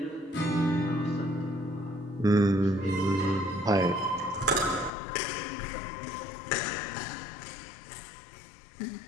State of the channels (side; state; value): right; drops out; at 4.9 s